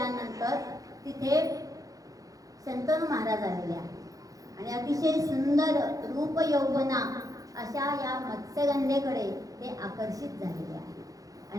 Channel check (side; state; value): left; late; 0.17 ms